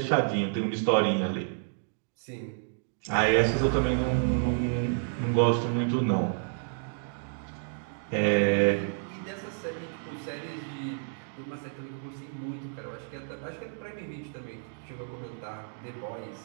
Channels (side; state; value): left; silent; digital silence